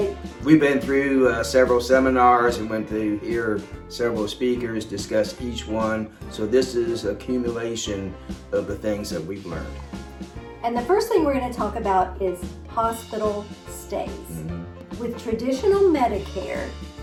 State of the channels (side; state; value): both; identical; correlation 1.00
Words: We've been through several seminars and went to hear several speakers discuss each one. So this is accumulation of the things that we've learned. And the first thing we're going to talk about is hospital stays. With traditional Medicare,